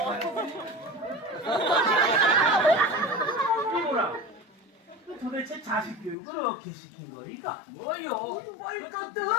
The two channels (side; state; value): right; drops out; at 6.2 s